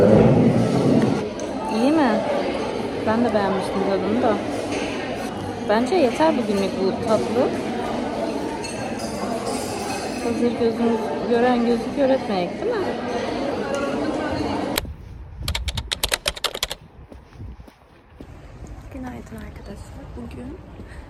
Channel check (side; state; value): both; identical; correlation 1.00